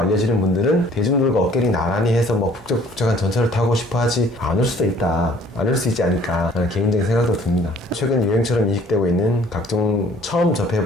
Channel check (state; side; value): normal; both; correlation 0.56